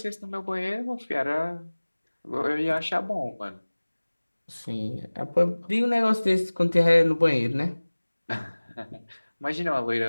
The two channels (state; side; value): inverted; both; correlation -1.00